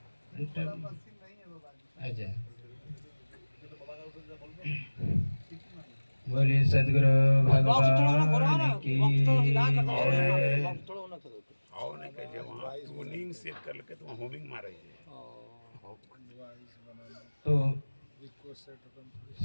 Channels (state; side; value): inverted; both; correlation -1.00